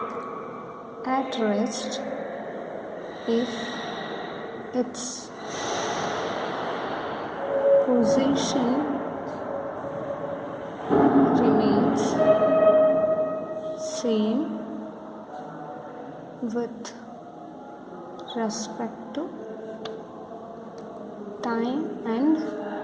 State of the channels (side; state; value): both; identical; correlation 1.00